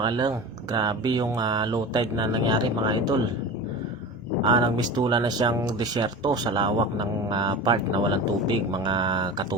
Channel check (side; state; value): both; normal; correlation 0.31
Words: Grabe yung low tide na nangyari mga idol. Nagmistula na siyang disyerto sa lawak ng part na walang tubig mga